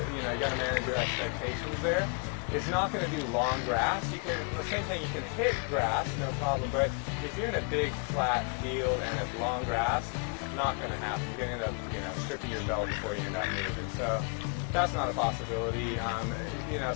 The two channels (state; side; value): quieter; right; 37.4 dB